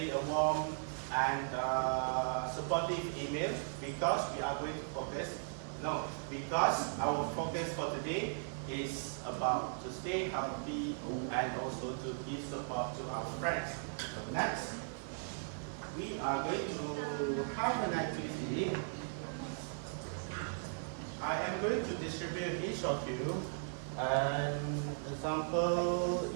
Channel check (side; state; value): left; silent; 53 dB below the other